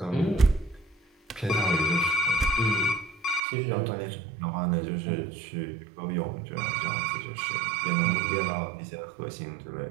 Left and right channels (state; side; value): drops out; left; at 3.4 s